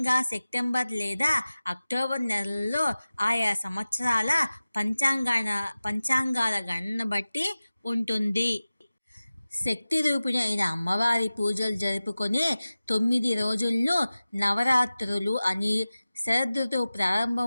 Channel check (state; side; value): inverted; both; correlation -0.96